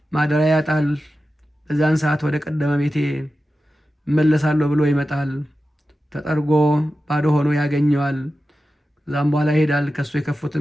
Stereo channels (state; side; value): normal; both; correlation 0.93